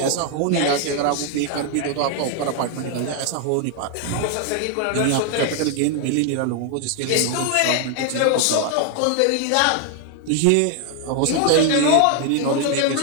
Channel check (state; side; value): different; both; correlation 0.00